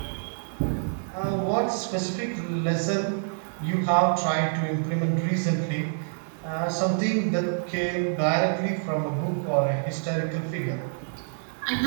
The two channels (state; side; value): silent; left; digital silence